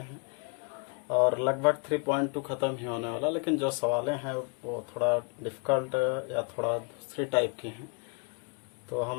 और लगभग 3.2 ख़त्म ही होने वाला, लेकिन जो सवालें हैं वो थोड़ा डिफ़िकल्ट या थोड़ा दूसरी टाइप की हैं, तो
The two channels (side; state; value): right; quieter; 35.4 dB